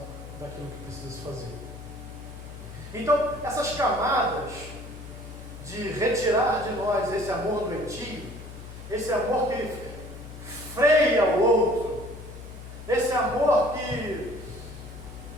daquilo que precisa se fazer. Então, essas camadas de retirar de nós esse amor doentio, esse amor que freia o outro, esse amor que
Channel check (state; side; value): noise; left; hum, 13 dB below the sound